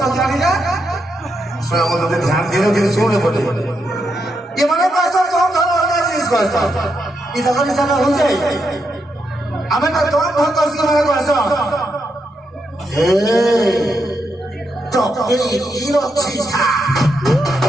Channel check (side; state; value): both; normal; correlation 0.82